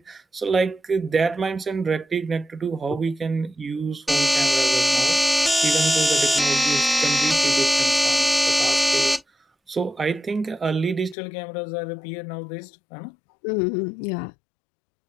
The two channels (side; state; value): right; drops out; at 11.2 s